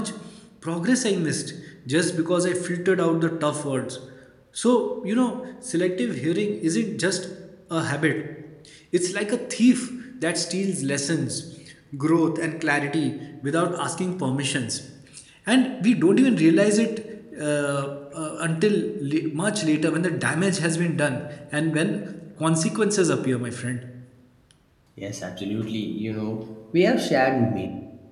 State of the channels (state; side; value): identical; both; correlation 1.00